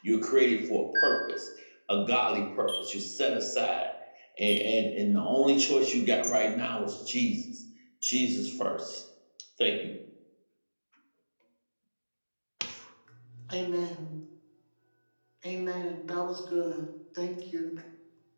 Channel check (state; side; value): inverted; both; correlation -1.00